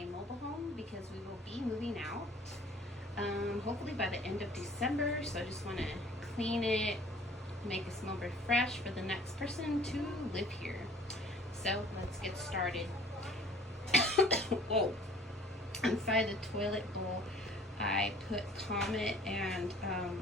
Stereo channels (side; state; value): both; normal; correlation 0.51